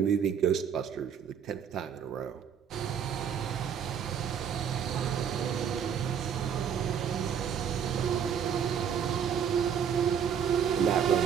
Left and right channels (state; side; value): quieter; left; 7.9 dB